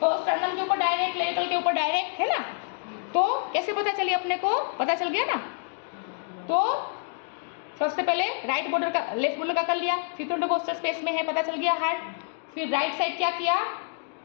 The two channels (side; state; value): right; silent; 56 dB below the other